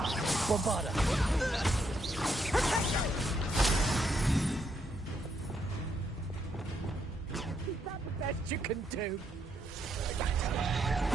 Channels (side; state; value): both; normal; correlation 0.76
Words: Bombarda! Is that the best you can do?